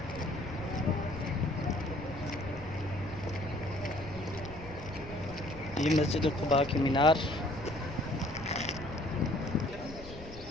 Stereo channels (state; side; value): noise; left; rumble, 14 dB below the sound